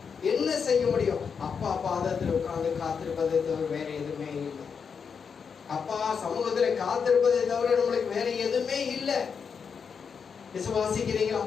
என்ன செய்ய முடியும்? அப்பா பாதத்தில் உட்கார்ந்து காத்திருப்பதை தவிர வேற எதுவுமே இல்லை. அப்பா சமூகத்துல காத்திருப்பதை தவிர நம்மளுக்கு வேற எதுவுமே இல்லை. விசுவாசிக்கிறீங்களா?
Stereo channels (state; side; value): quieter; right; 6.2 dB